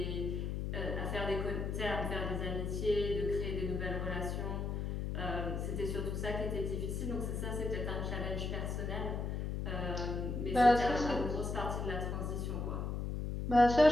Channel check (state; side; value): noise; left; hum, 2 dB below the sound